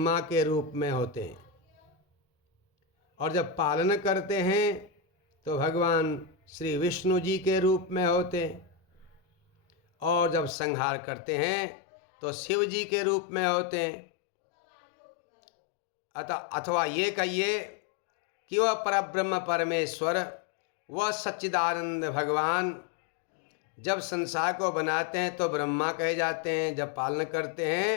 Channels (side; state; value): right; drops out; at 10.6 s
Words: के रूप में होते हैं, और जब पालन करते हैं तो भगवान श्री विष्णु जी के रूप में होते हैं, और जब संहार करते हैं तो शिव जी के रूप में होते हैं। अथवा ये कहिए कि वह परब्रह्म परमेश्वर, वह सच्चिदानंद भगवान जब संसार को बनाते हैं तो ब्रह्मा कहे जाते हैं, जब पालन करते